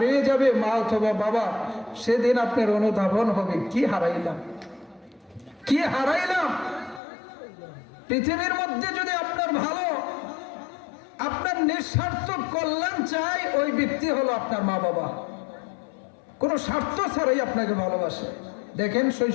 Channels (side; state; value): right; drops out; at 7.0 s